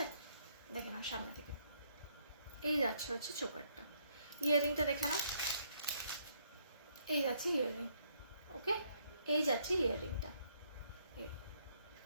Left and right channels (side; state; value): both; inverted; correlation -0.70